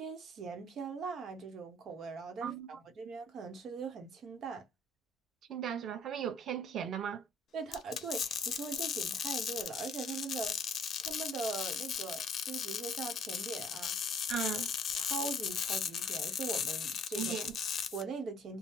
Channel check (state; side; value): normal; both; correlation 0.57